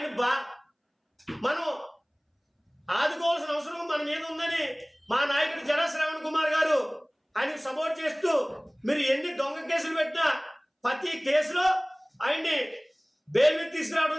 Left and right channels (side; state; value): both; identical; correlation 1.00